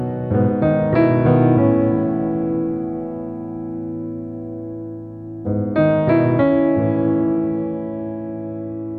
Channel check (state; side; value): identical; both; correlation 1.00